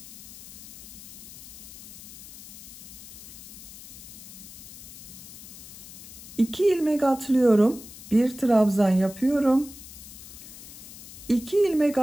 İki ilmek atlıyorum. Bir trabzan yapıyorum. 2 ilmek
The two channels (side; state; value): left; noise; hiss, 15 dB below the sound